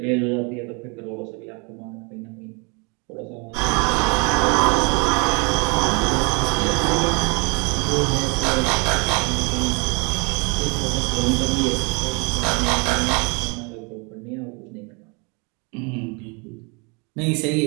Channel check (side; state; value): left; quieter; 32.2 dB